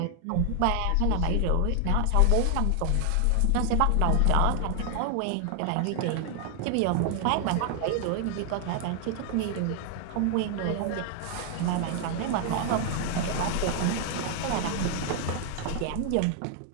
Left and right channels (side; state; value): both; different; correlation 0.00